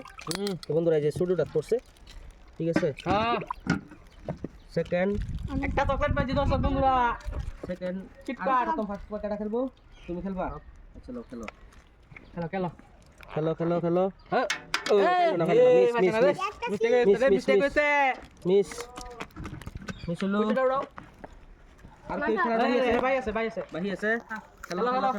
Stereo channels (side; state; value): both; identical; correlation 1.00